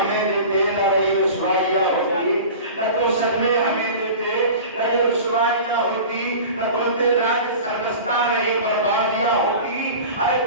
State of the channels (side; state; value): both; inverted; correlation -0.37